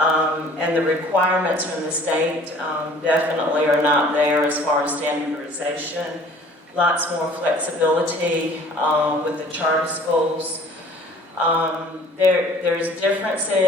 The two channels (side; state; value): both; normal; correlation 0.51